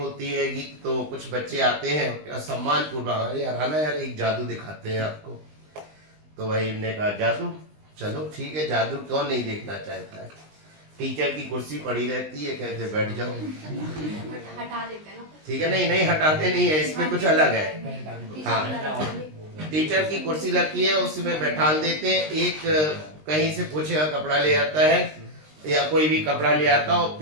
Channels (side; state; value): left; late; 20 ms